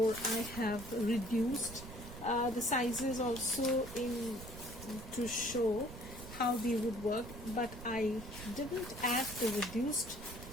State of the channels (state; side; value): noise; right; rumble, 12 dB below the sound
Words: I have reduced the sizes also to show how they would work, but I didn't add the reduced